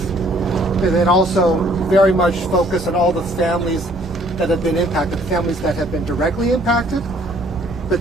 and then also very much focus on all the families that have been impacted, families that have been directly impacted, but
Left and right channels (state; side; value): normal; both; correlation 0.61